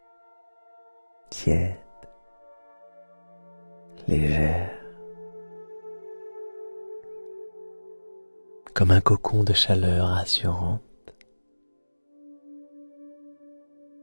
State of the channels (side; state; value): both; inverted; correlation -1.00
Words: tiède, légère, comme un cocon de chaleur rassurante,